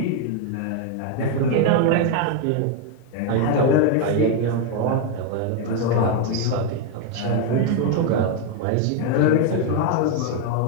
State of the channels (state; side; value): different; both; correlation 0.01